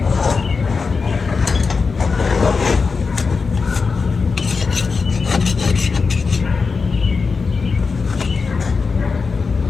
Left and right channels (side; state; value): right; quieter; 4.8 dB